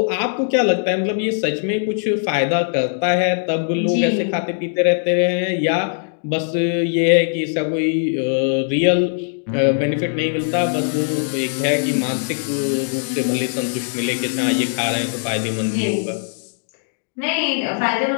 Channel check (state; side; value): silent; right; digital silence